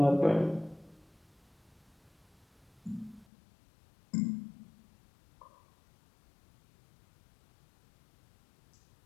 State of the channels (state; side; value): drops out; right; at 3.2 s